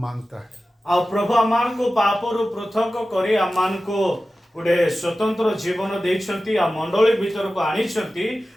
मांगता है। आ प्रभु आमान को पापरु पृथक करी आमान को गोटे स्वतंत्र जीवन देइछंती आ मंडली भीतर को आनिछंती।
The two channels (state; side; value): normal; both; correlation 0.95